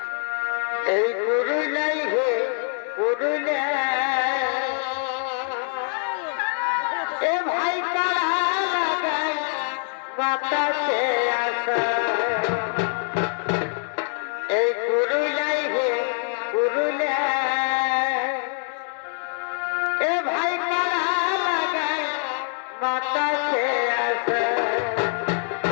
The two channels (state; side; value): silent; right; 58 dB below the other